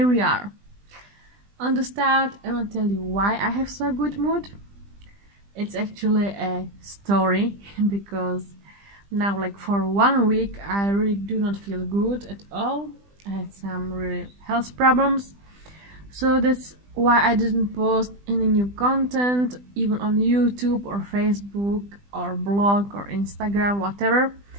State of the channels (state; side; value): late; left; 20 ms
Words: we are. On the start, I want to tell you why I have so good mood. It's actually a story because now for 1 week I really do not feel good at all. I had some really health problems, so that's why I didn't post any new content even on YouTube or Facebook or blog or Instagram, whatever.